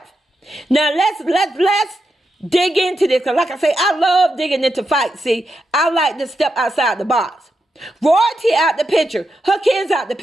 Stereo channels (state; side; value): normal; both; correlation 0.86